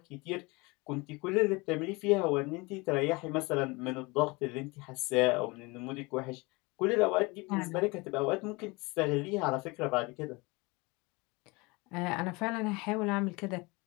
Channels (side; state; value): right; quieter; 25.5 dB